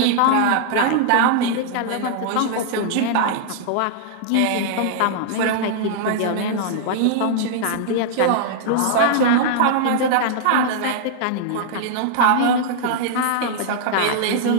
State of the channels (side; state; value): both; different; correlation -0.01